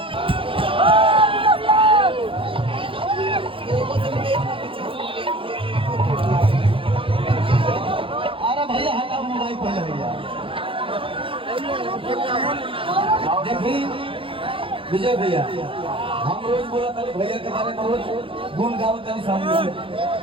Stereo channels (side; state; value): left; late; 0.26 ms